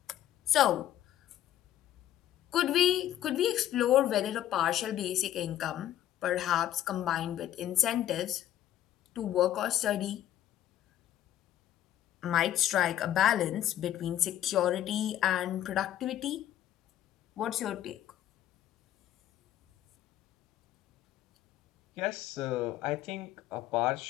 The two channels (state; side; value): quieter; right; 12.1 dB